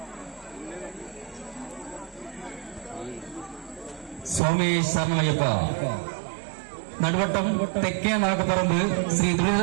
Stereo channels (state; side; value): drops out; left; at 4.4 s